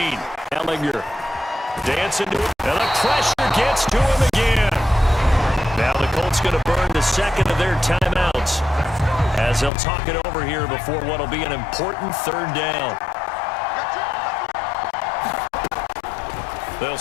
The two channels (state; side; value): drops out; right; at 9.7 s